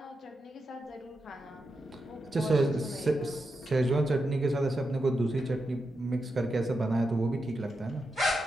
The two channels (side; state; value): both; normal; correlation 0.87